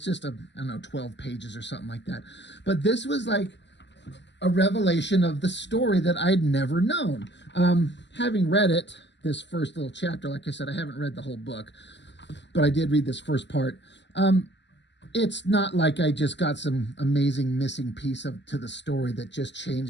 just 12 pages or something like that. But this was like a revelation of the story that I'd never known. Having read it, this first little chapter, like I said, I haven't read the whole book, but I did read this first part. It's not like I just got some amazing missing piece to the story that just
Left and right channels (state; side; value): late; right; 0.52 ms